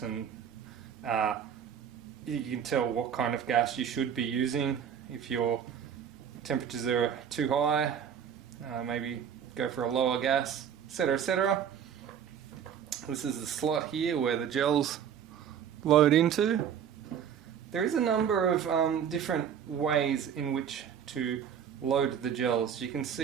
and you can tell what kind of gas you should be using. If your temperatures are too high, maybe go for a lower gas, etc, etc. This is the slot here where the gels load into. There is a number of different ways in which to load the gels. You can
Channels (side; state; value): left; quieter; 8.3 dB